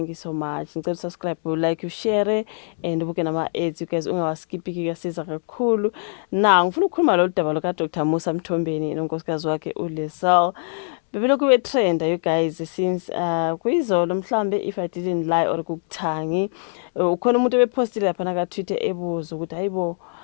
you so much. Ngicela subscribe, like, share and ubuke nama ads you guys ungawaskippi kuyasiza kakhulu. Ngifuna ukukhuluma lo daba lo ka Dr. Musa Mthombeni nonkosikazi wakhe uLisel. Bebelokhu betrenda you guys since kuyizolo mhlambe if I didn't lie or kukuthangi. Ukhona umuntu ebepostile lapha na ka Twitter ebuza ukuthi hayibo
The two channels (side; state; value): right; silent; 63 dB below the other